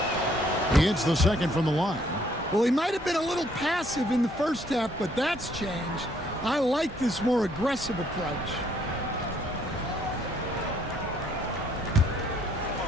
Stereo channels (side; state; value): both; normal; correlation 0.66